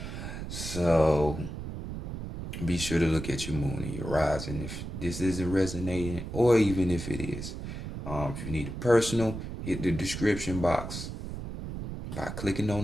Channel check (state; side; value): noise; right; rumble, 7 dB below the sound